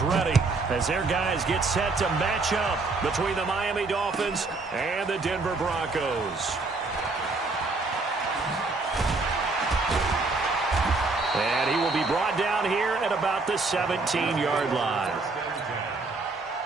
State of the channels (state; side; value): quieter; left; 3.7 dB